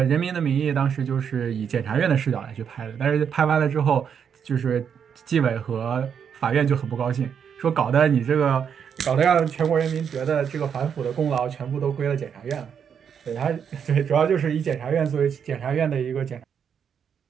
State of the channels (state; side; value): quieter; left; 7.5 dB